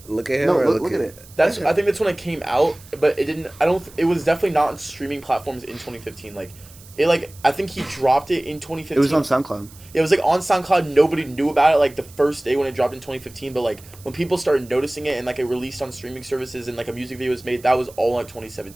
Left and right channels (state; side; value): noise; right; hiss, 22 dB below the sound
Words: him. No, or look at it. That's Yeah. I think that's when it came out, but it didn't. I don't. It was definitely not on streaming platforms in 2015. Like, it like I think he dropped it in 2015. It was on SoundCloud. It was like on SoundCloud. Nobody knew about it like the first day when it dropped in 2015. But like when people started noticing it and like it released on streaming services and like a music video was made, that was all like